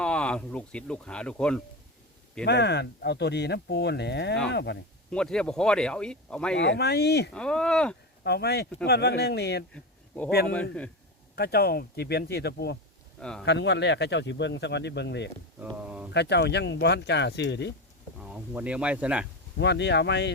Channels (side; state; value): both; normal; correlation 0.19